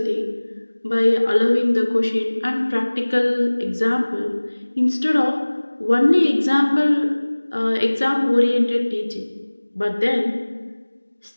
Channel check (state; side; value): inverted; both; correlation -1.00